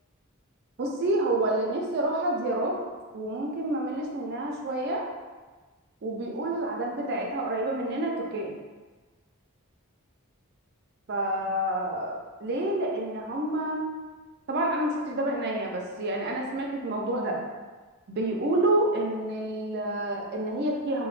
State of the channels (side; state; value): both; normal; correlation 0.03